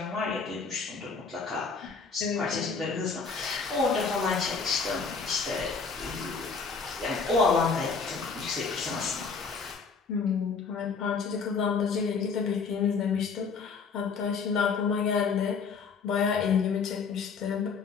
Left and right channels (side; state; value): right; quieter; 5.2 dB